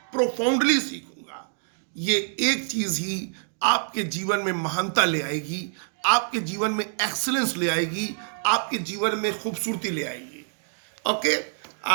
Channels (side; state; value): left; silent; digital silence